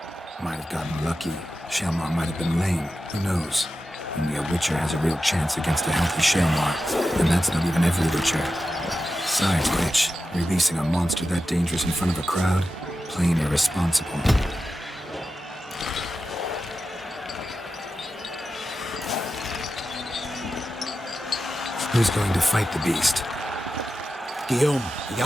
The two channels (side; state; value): both; normal; correlation 0.91